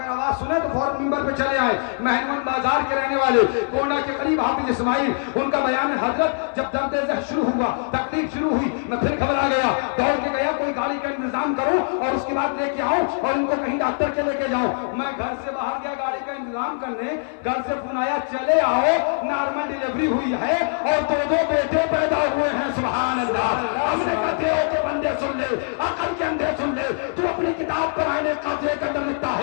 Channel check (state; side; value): silent; right; 57 dB below the other